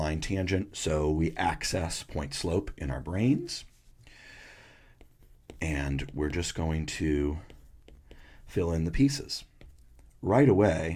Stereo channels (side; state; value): both; identical; correlation 1.00